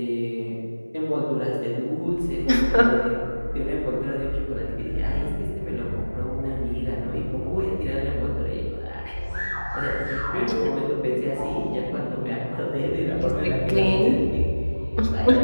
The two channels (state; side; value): inverted; both; correlation -1.00